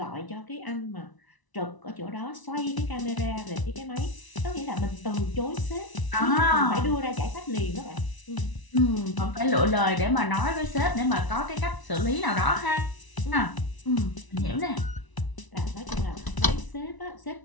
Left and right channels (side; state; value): right; late; 1.0 ms